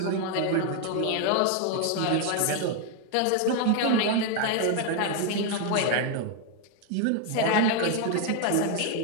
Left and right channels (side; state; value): both; different; correlation 0.01